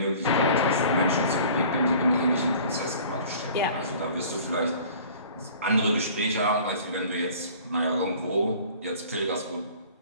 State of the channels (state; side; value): inverted; both; correlation -0.47